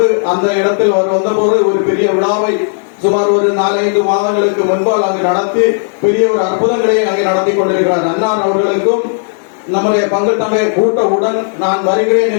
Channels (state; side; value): silent; right; digital silence